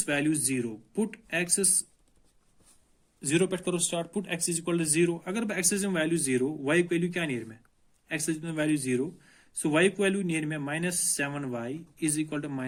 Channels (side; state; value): both; identical; correlation 1.00